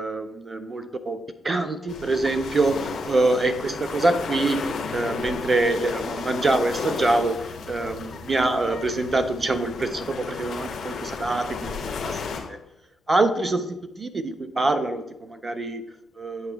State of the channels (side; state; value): both; normal; correlation 0.84